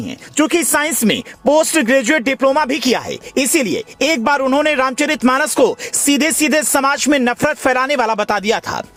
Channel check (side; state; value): both; identical; correlation 1.00